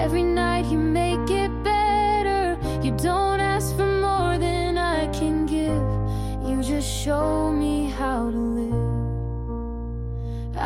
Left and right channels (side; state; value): both; identical; correlation 1.00